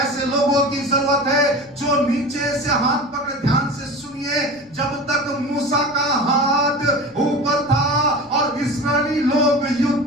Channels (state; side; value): noise; left; rumble, 29 dB below the sound